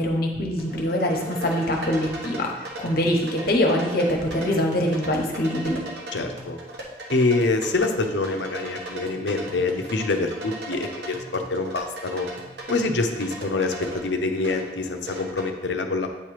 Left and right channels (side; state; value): both; normal; correlation 0.43